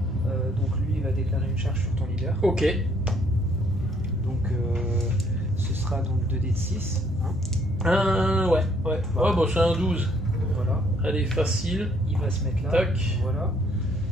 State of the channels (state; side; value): normal; both; correlation 0.66